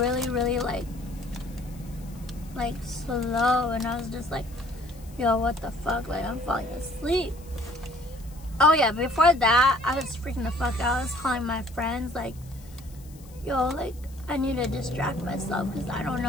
really like slow, and I was just like, yo, what the fuck? Like, I'm falling asleep. Oh yeah, before that, I was freaking the fuck out. I was calling my friends like, yo, like, I need to distract myself because I don't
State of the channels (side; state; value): left; noise; hiss, 24 dB below the sound